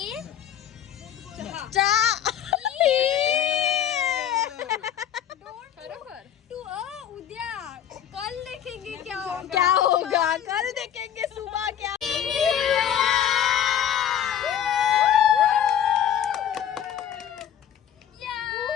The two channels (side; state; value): right; quieter; 9.8 dB